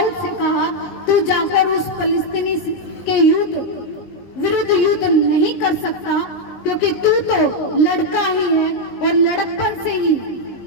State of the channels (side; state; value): right; late; 19 ms